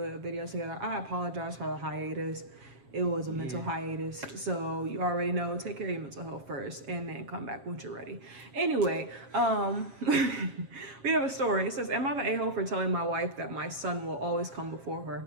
video together. I apologize for the hiatus. It was a mental hiatus, so you already know, take care of your mental health first and then come back once you're ready. Anyway, we have a story. It says, am I the a-hole for telling my wife that my son will always come before her?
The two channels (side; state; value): left; late; 7.4 ms